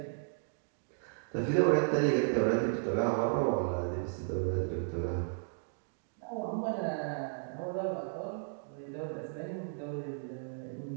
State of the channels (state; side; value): silent; left; digital silence